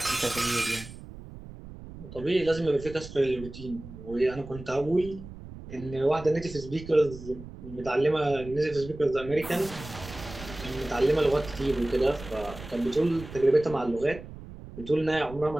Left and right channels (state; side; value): noise; right; rumble, 14 dB below the sound